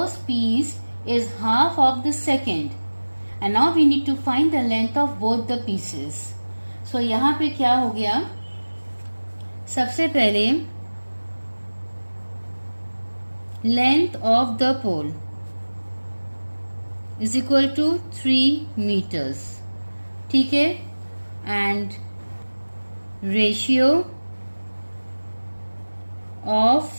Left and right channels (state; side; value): inverted; both; correlation -1.00